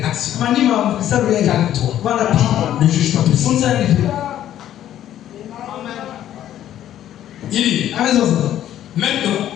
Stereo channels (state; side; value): quieter; right; 11.7 dB